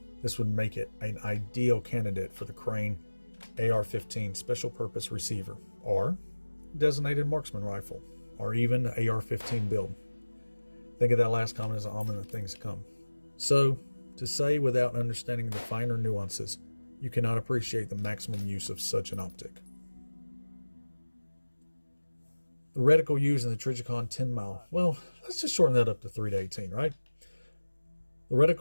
This would make it an ideal candidate for the Crane AR-15 Special Purpose Receiver, or Designated Marksman Rifle, or even the AR-15 build. Think of that last comment as an omen of things to come. So, to say without understanding the finer nuances, you cannot appreciate the maximum use of such an optic. The reticle used in the Trijicon Tenmile, well, let's just shorten that up to 3 to 18, right? The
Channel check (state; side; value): inverted; both; correlation -1.00